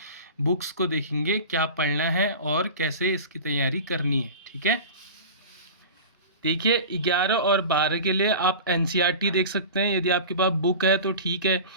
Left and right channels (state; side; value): inverted; both; correlation -0.34